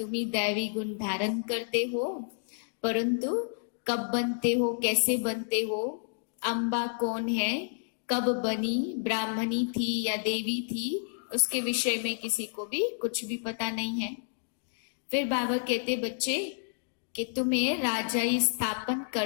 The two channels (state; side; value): silent; right; digital silence